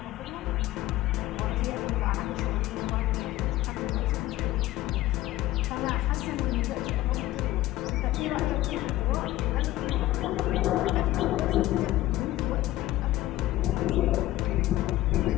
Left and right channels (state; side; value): quieter; right; 15.9 dB